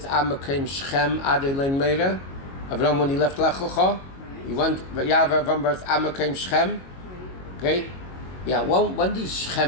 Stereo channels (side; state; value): right; late; 22 ms